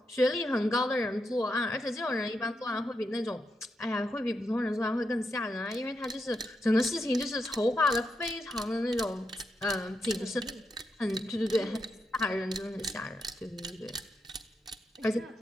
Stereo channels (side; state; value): both; normal; correlation 0.84